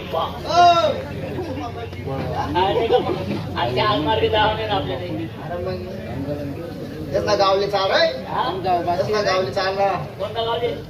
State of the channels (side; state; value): both; identical; correlation 1.00